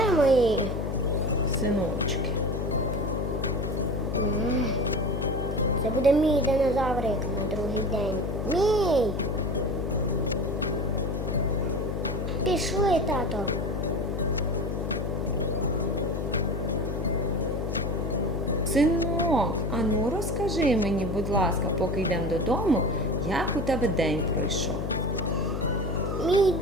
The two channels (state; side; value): noise; left; hum, 2 dB below the sound